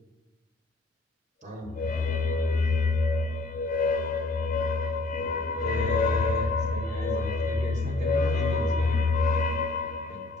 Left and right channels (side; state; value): right; quieter; 3.1 dB